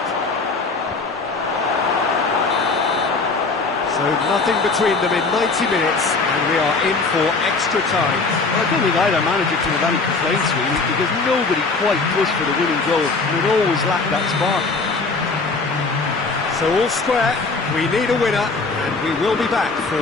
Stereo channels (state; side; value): quieter; right; 4.0 dB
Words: So nothing between them in 90 minutes, and we are in for extra time. Well, I don't think either manager can have any complaints, really, because nobody quite pushed for the winning goal, and it always lacked that spark. So all square, we need a winner, and we will be back for